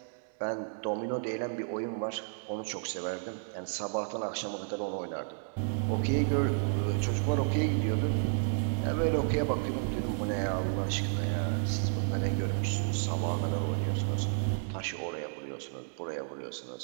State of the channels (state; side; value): silent; left; digital silence